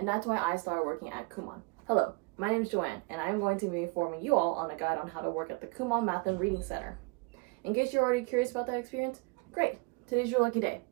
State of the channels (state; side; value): quieter; left; 28.2 dB